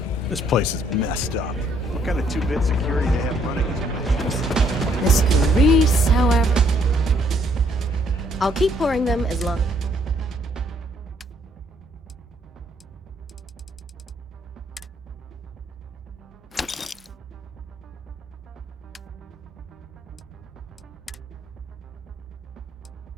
This place is messed up. What kind of two-bit security they have running? Mr. Reese, however... I'll keep pouring them as long.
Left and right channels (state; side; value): normal; both; correlation 0.67